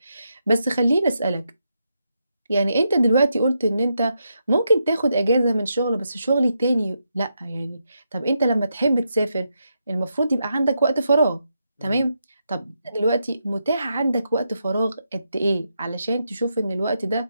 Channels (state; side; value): inverted; both; correlation -0.83